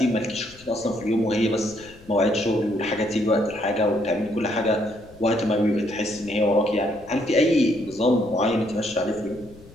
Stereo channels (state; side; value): noise; left; rumble, 23 dB below the sound